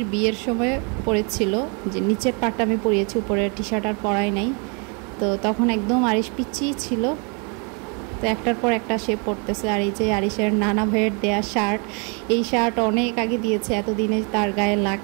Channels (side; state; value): left; quieter; 35.0 dB